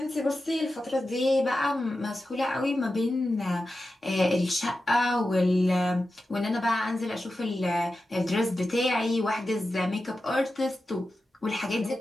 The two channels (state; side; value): normal; both; correlation 0.92